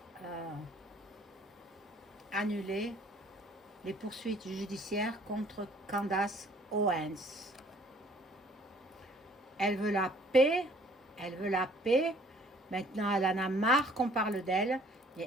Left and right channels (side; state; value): both; normal; correlation 0.57